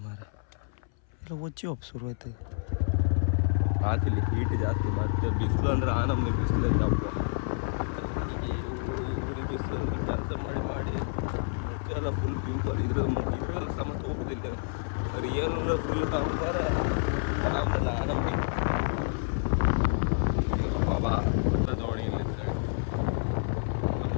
ಮಾರ ಎಲ್ಲ ಒಚ್ಚಿ ಶುರು ಆಯ್ತು. ಹಾಕಿಲ್ಲಿ ಹೀಟ್ ಜಾಸ್ತಿ, ಮತ್ತೆ ಬಿಸಿಲು ಅಂದ್ರೆ ನಮ್ಮದು ಬಿಸಿಲು ಹಬ್ಬ. ಊರಿಗೆ ಬಿಸಿಲು ಕೆಲಸ ಮಾಡಿ ಎಲ್ಲ ಫುಲ್ ಪಿಂಪಲ್ ಇದ್ರೆಲ್ಲ ಸಮತ ಹೋಗೋದಿಲ್ಲ. ರಿಯಲ್ ಫುಲ್ ಕಾಣ್ತಾರೆ ಆರಾಮಲ್ಲ ನಮಗೆ. ಬಾಬಾ ಎಲ್ಲ ದೋಣಿ ಇಲ್ಲ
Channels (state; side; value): silent; right; 59 dB below the other